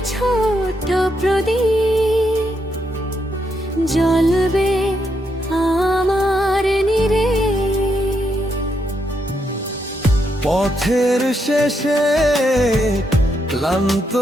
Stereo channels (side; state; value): both; normal; correlation 0.79